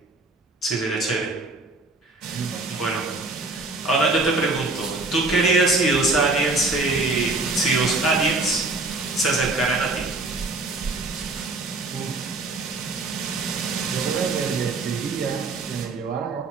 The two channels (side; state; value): left; quieter; 3.3 dB